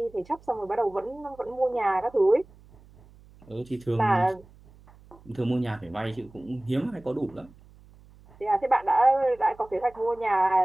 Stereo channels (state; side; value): noise; right; hum, 25 dB below the sound